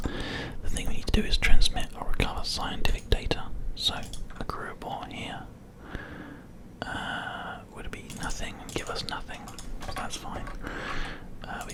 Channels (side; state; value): both; identical; correlation 1.00